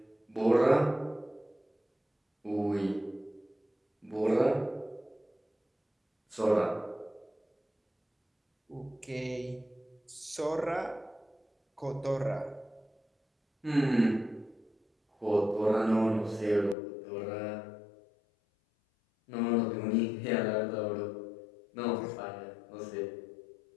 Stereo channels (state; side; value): drops out; right; at 16.8 s